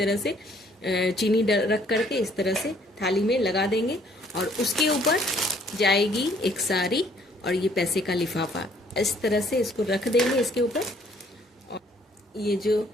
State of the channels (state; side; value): normal; both; correlation 0.62